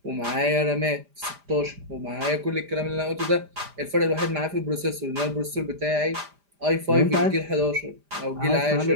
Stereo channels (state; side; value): late; left; 5.0 ms